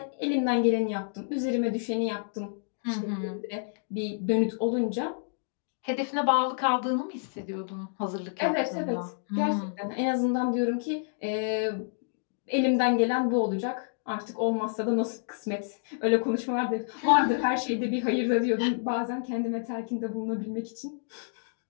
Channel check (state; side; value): silent; right; digital silence